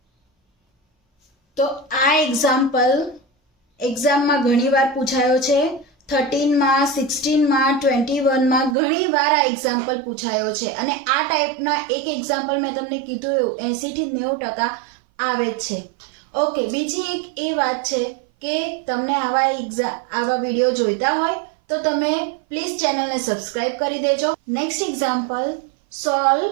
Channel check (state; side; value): drops out; left; at 8.8 s